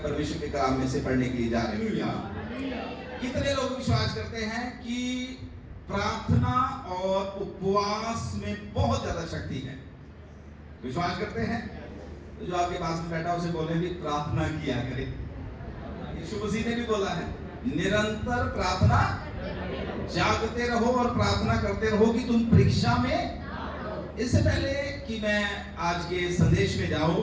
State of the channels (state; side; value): identical; both; correlation 1.00